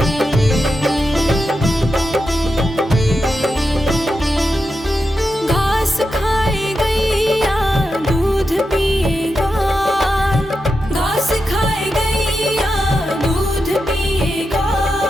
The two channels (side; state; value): both; normal; correlation 0.88